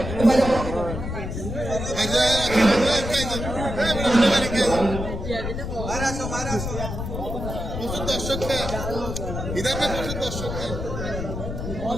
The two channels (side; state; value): left; noise; rumble, 5 dB below the sound